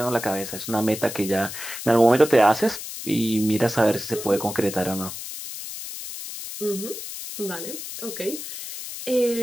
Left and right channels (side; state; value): left; noise; hiss, 9 dB below the sound